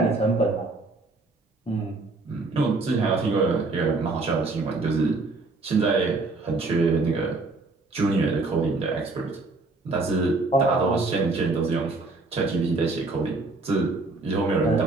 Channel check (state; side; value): quieter; left; 3.5 dB